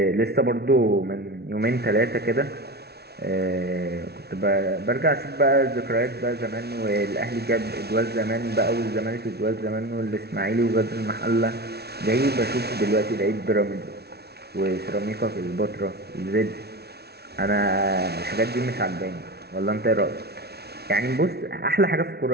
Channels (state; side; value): late; left; 0.47 ms